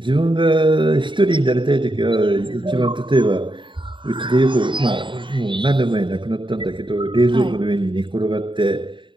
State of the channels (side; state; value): left; late; 0.23 ms